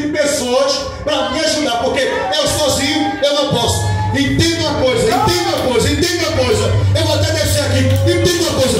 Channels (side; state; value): both; identical; correlation 1.00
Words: de pessoas para me ajudar, porque eu sozinho eu não posso. Entenda uma coisa. Eu vou até descer aqui. Entenda uma coisa.